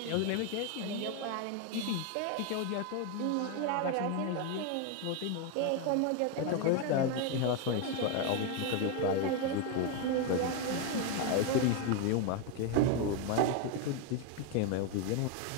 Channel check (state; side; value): different; both; correlation 0.01